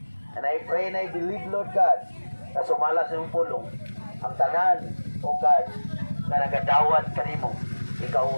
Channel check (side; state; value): both; inverted; correlation -1.00